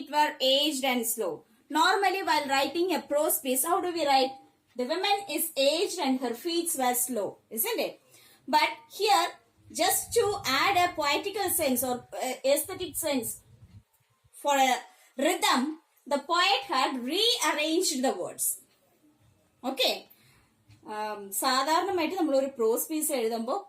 were aged and slow. Normally while writing a prose piece, how do we write? The woman is aged and her feet were slow, isn't it? But here, just to add a poetical sense or aesthetic sense for a rhythm, the poet had rearranged the words. Okay. സാധാരണമായിട്ട് നമ്മൾ ഒരു പ്രോസ് piece എഴുതുമ്പോൾ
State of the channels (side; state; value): both; identical; correlation 1.00